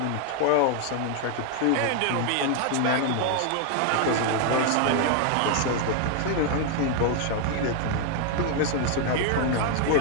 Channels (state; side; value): different; both; correlation 0.00